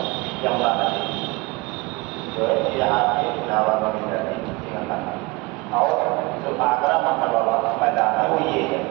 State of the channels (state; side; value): quieter; left; 24.3 dB